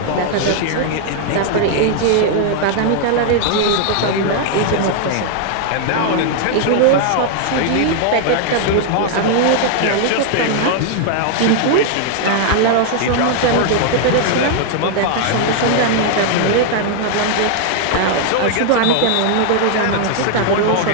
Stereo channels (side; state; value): both; different; correlation 0.00